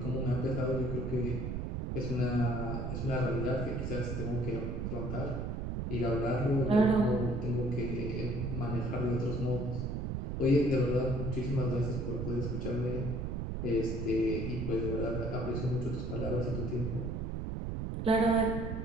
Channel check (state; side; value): noise; right; rumble, 2 dB below the sound